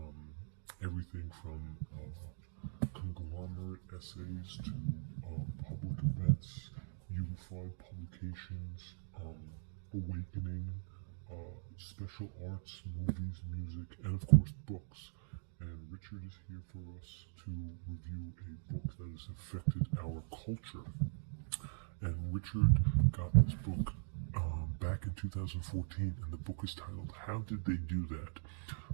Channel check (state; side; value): silent; left; digital silence